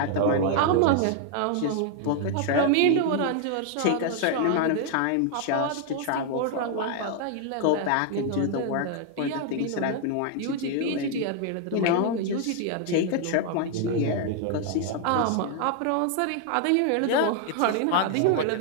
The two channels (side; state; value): both; different; correlation 0.00